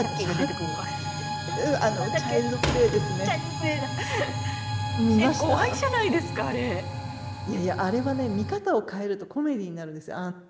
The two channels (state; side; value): identical; both; correlation 1.00